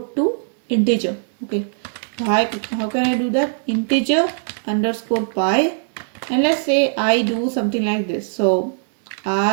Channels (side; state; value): left; silent; digital silence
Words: to integer. Okay, how can I do that? Integer underscore pi, and let's say I do something like this. So